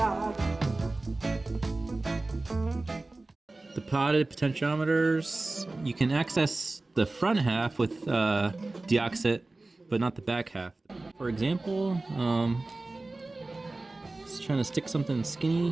The potted potentiometers, you can access the front half with deoxit, but not the back half. For example, just trying to stick something skinny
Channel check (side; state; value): left; quieter; 3.1 dB